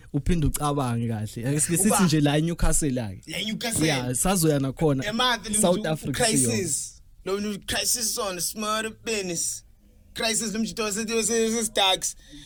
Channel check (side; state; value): both; identical; correlation 1.00